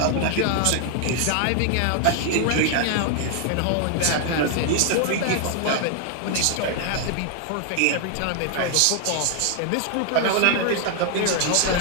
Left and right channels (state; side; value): different; both; correlation 0.00